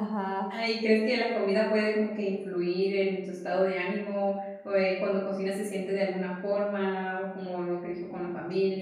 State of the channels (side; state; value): both; identical; correlation 1.00